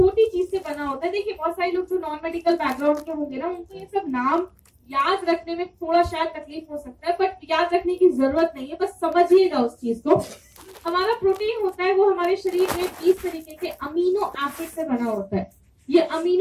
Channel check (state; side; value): identical; both; correlation 1.00